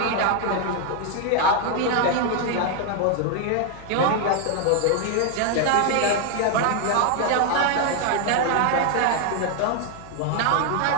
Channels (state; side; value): different; both; correlation 0.00